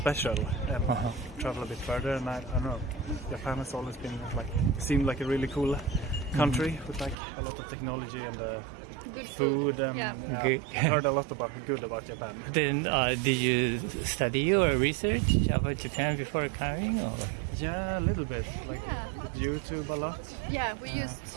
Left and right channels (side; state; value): left; drops out; at 7.2 s